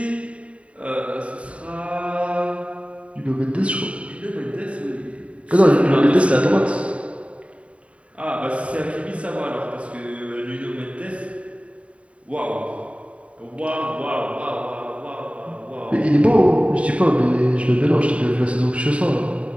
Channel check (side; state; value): left; late; 0.064 ms